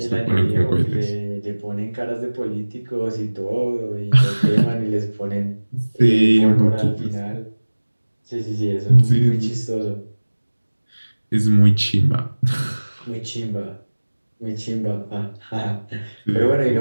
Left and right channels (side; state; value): both; inverted; correlation -1.00